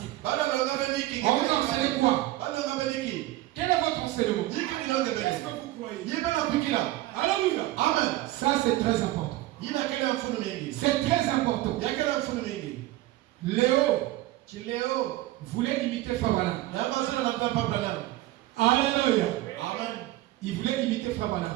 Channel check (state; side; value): quieter; left; 16.7 dB